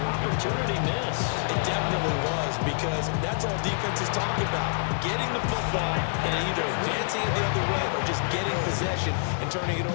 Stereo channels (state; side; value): silent; right; digital silence